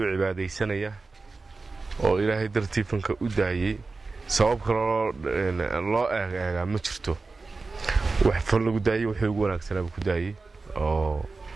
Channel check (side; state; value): left; quieter; 3.9 dB